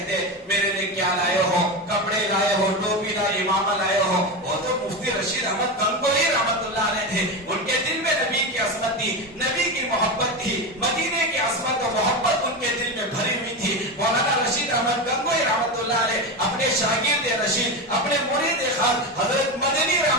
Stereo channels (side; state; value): both; normal; correlation 0.18